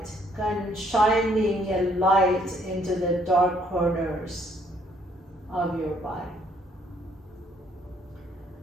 kind of shining a light into the dark corners of your body.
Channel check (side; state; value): both; normal; correlation 0.66